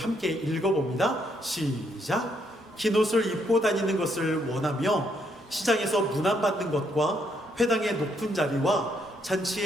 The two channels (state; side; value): normal; both; correlation 0.73